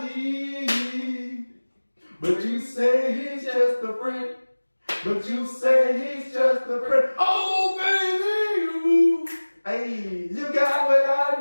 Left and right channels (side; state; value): both; inverted; correlation -1.00